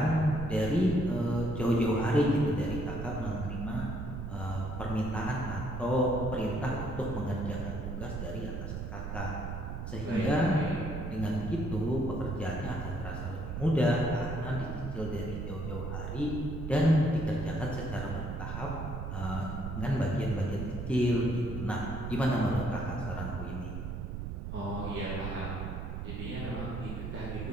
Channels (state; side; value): noise; right; rumble, 5 dB below the sound